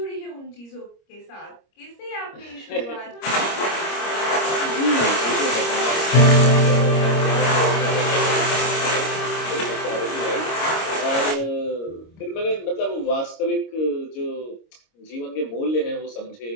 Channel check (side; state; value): right; late; 26 ms